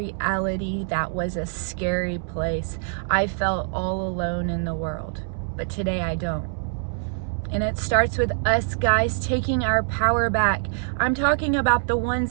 that was a scary place. I felt all alone in the world, but today I don't. And it starts with us guys taking our power back. I'm talking about the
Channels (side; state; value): left; silent; 62 dB below the other